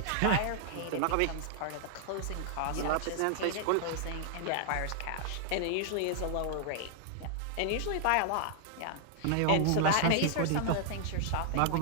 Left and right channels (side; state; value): both; different; correlation 0.00